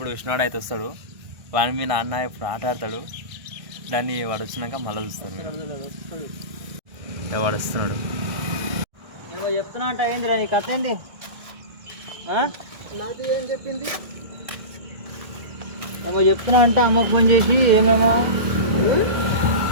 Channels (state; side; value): late; left; 1.6 ms